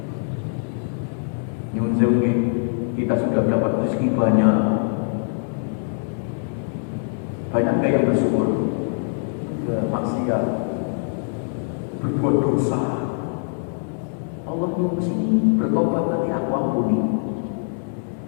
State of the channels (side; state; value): right; silent; digital silence